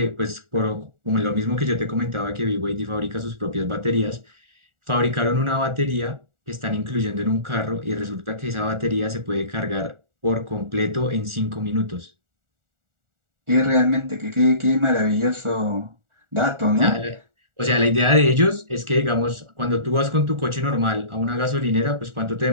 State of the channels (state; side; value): late; left; 1.4 ms